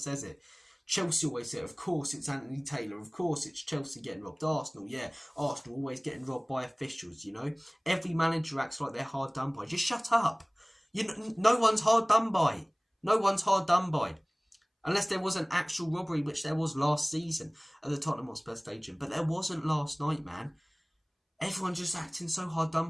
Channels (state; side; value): identical; both; correlation 1.00